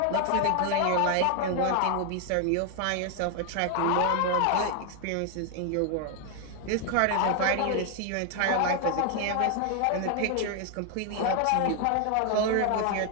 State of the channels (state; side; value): different; both; correlation 0.00